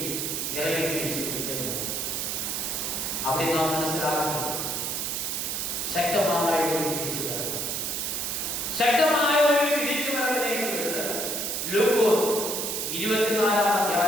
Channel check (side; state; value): right; noise; hiss, 1 dB below the sound